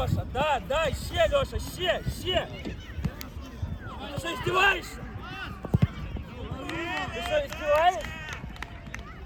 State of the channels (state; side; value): identical; both; correlation 1.00